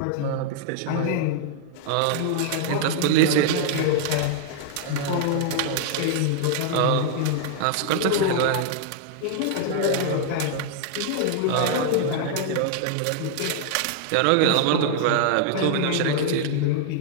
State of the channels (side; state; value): both; different; correlation -0.01